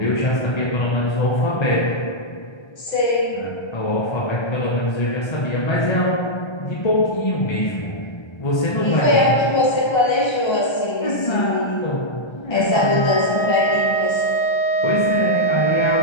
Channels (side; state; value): right; late; 1.3 ms